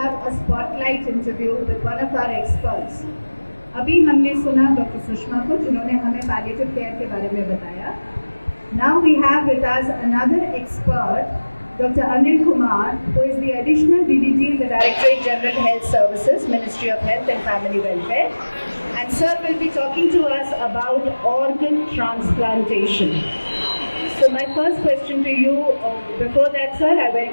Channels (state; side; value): inverted; both; correlation -1.00